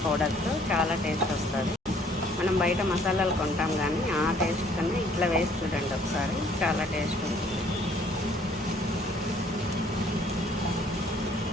పౌడర్తో చాలా టేస్ట్ వస్తుంది. మనం బయట మసాలాలు కొంటాం, కానీ ఆ టేస్ట్ కన్నా ఇట్లా వేసి చూడండి ఒకసారి, చాలా టేస్ట్ ఉంటుంది.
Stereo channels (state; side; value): normal; both; correlation 0.60